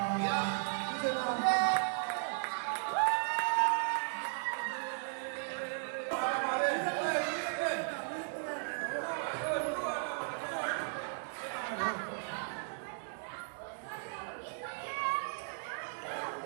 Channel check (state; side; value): silent; left; digital silence